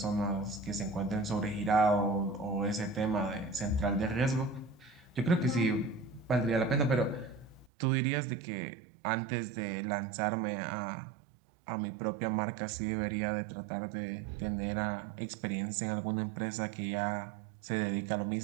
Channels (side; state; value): left; drops out; at 7.7 s